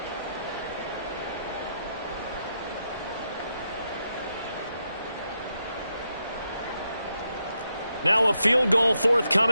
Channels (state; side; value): inverted; both; correlation -0.83